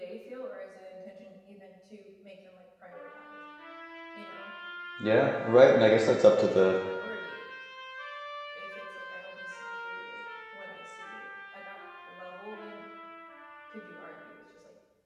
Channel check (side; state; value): both; identical; correlation 1.00